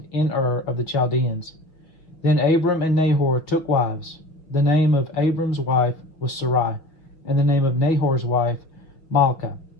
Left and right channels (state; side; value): late; right; 6.3 ms